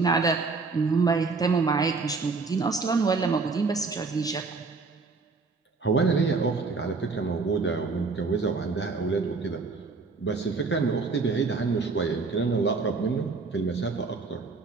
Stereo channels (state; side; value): quieter; left; 4.3 dB